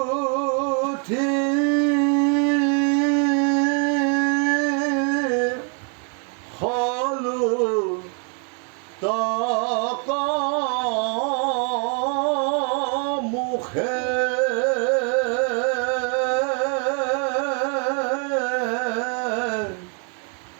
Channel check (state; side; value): quieter; left; 39.6 dB